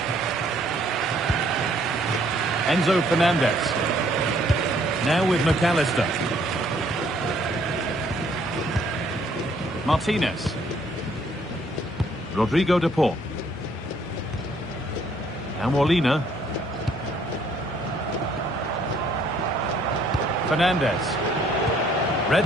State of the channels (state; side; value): normal; both; correlation 0.64